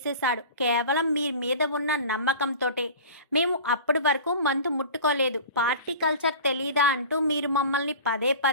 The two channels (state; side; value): inverted; both; correlation -0.38